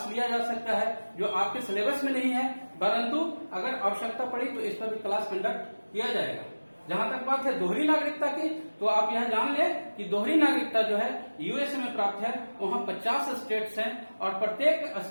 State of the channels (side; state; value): both; inverted; correlation -1.00